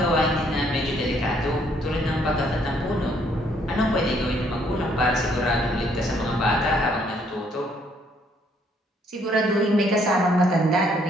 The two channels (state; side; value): normal; both; correlation 0.67